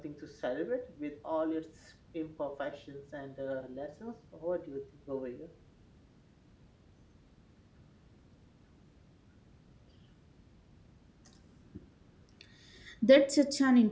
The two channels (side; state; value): both; identical; correlation 1.00